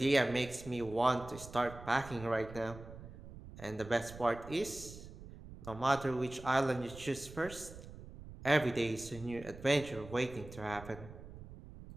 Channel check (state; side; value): noise; right; rumble, 15 dB below the sound